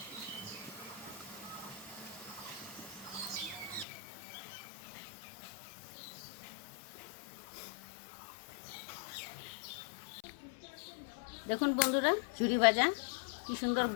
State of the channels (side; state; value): right; drops out; at 3.9 s